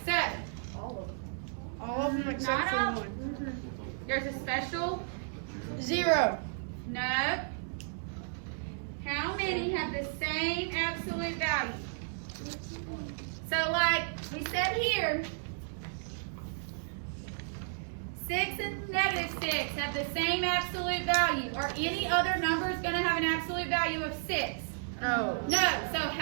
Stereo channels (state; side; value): silent; left; digital silence